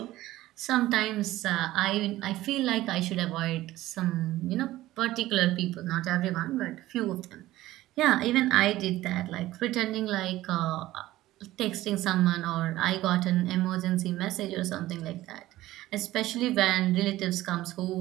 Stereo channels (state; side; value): quieter; left; 16.0 dB